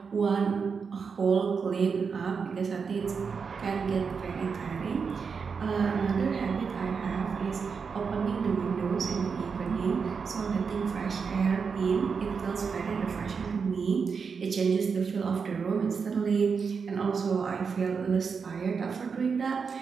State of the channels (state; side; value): quieter; left; 5.7 dB